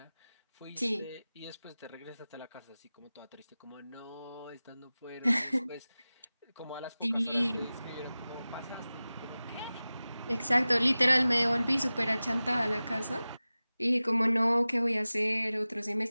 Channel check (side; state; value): both; inverted; correlation -0.97